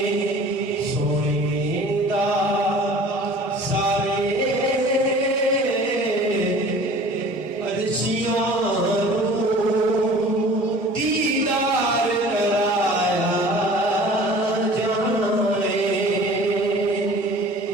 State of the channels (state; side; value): normal; both; correlation 0.45